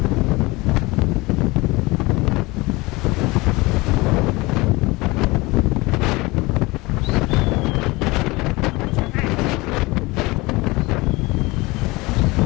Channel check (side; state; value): right; quieter; 22.7 dB